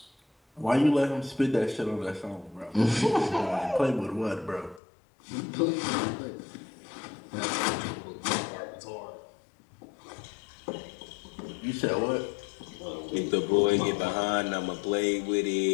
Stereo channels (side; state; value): right; drops out; at 4.8 s